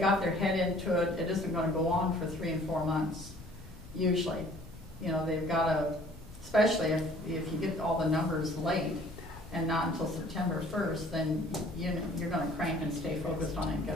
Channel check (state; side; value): normal; both; correlation 0.54